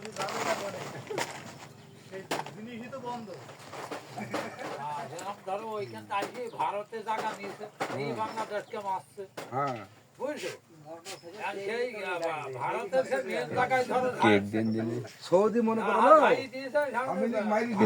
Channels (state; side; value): identical; both; correlation 1.00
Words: ভারতে জায়গা নিয়েছে এই বাংলাদেশকে মারছে হ্যাঁ বুঝছো সেই ভারতের সে মেন জায়গায় ধরো সৌদি মনে করো না আমি মাইরি